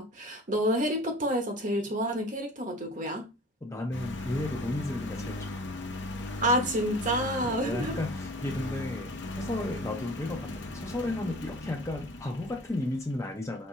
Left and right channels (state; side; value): normal; both; correlation 0.43